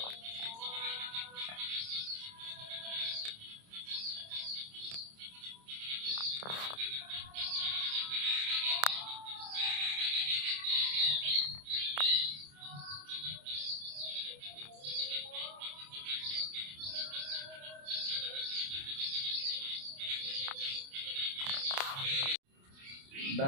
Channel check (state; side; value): late; left; 28 ms